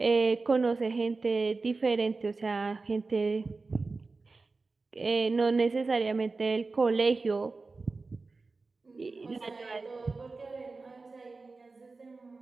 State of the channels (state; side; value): quieter; left; 3.8 dB